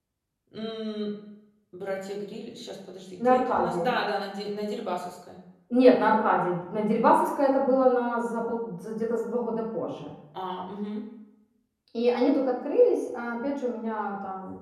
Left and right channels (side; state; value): both; identical; correlation 1.00